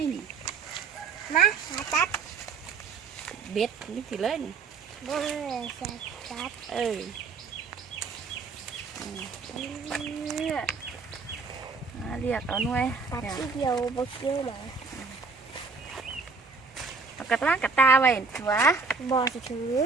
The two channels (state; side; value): quieter; left; 4.5 dB